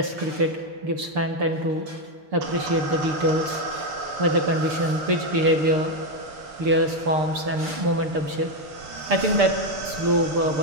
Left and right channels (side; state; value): left; late; 6.7 ms